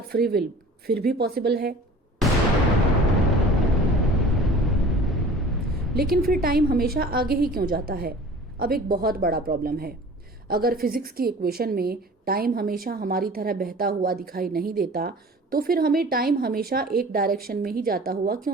फ्री विल फिर भी पॉसिबल है? लेकिन फिर टाइम हमेशा आगे ही क्यों जाता है? अब एक बहुत बड़ा प्रॉब्लम है। अगर फिजिक्स की इक्वेशन में टाइम हमेशा हमारी तरह बहता हुआ दिखाई नहीं देता तो फिर हमें टाइम हमेशा एक डायरेक्शन में ही जाता हुआ क्यों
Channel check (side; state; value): both; normal; correlation 0.44